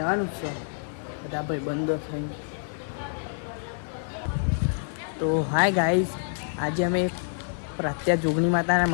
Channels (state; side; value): silent; right; 60 dB below the other